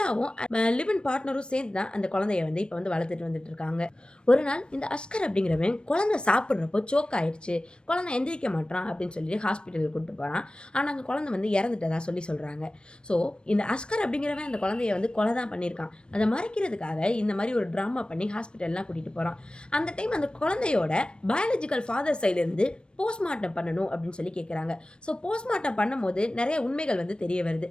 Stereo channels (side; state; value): right; late; 0.054 ms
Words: லிவ் இன் பார்ட்னரும் சேர்ந்து தான் அந்த குழந்தைய வந்து இப்போ வந்து வளர்த்துட்டு வந்துட்டு இருக்காங்க. ஒரு நாள் இந்த அஸ்கர் அப்படிங்கிறவன் குழந்தை சாப்பிட்றப்போ சோக் ஆயிடுச்சு, குழந்தை எந்திரிக்க மாட்டான் அப்படின்னு சொல்லி ஹாஸ்பிட்டலுக்கு கூப்பிட்டு போகிறான். ஆனால் அந்த குழந்தை வந்து இறந்துட்டதா சொல்கிறாங்க. ஸோ இந்த அஸ்கர் அப்படிங்கிறவன் அந்த குழந்தைய வந்து கொலை தான் பண்ணியிருக்கான். அதை மறைக்கிறதுக்காக இந்த மாதிரி ஒரு ட்ராமா பண்ணி ஹாஸ்பிட்டல்லாம் கூட்டிகிட்டு போகிறான். அந்த டைம் அந்த குழந்தையோட பயாலஜிக்கல் ஃபாதர் சைட்லேருந்து போஸ்ட்மார்ட்டம் பண்ணணும் அப்படின்னு சொல்லி கேட்குறாங்க. ஸோ போஸ்ட்மார்ட்டம் பண்ணும்போது நிறைய உண்மைகள் வந்து தெரிய வருது.